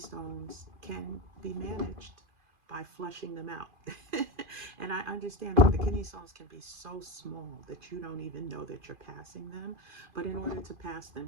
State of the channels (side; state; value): left; late; 2.5 ms